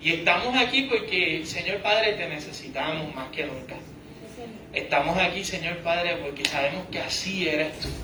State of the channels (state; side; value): identical; both; correlation 1.00